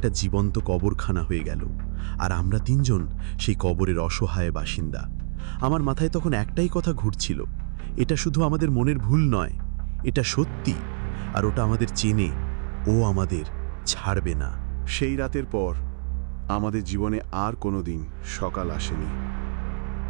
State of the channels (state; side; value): silent; left; digital silence